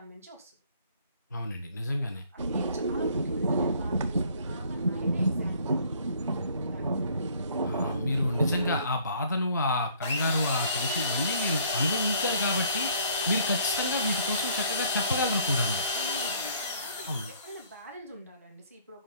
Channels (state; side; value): inverted; both; correlation -0.59